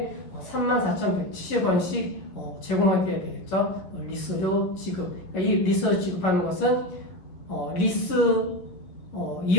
34,170원씩 제공하게 되겠죠. 리스료 지급. 그러니까 이 리스를 지급하는 것은 리스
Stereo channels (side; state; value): right; late; 11 ms